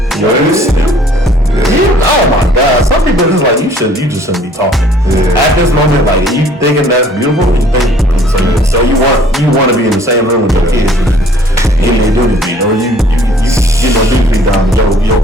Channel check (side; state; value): both; normal; correlation 0.56